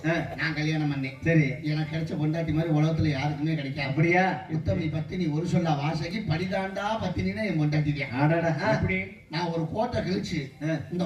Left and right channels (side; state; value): both; identical; correlation 1.00